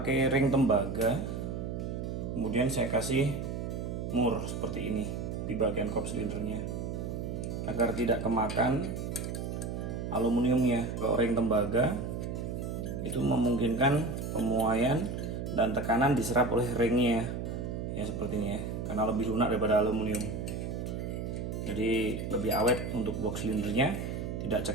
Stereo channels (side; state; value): right; noise; hum, 4 dB below the sound